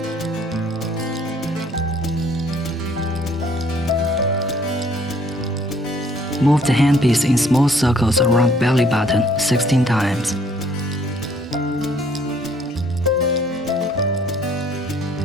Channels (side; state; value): both; normal; correlation 0.61